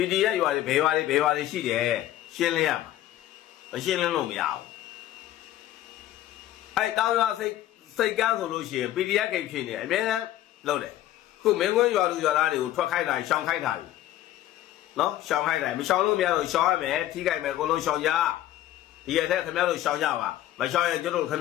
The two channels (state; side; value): quieter; right; 13.6 dB